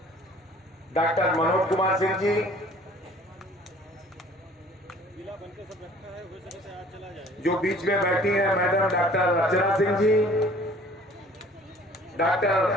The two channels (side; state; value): both; normal; correlation 0.52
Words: डॉक्टर मनोज कुमार सिंह जी, जो बीच में बैठी हैं madam doctor Archana Singh ji,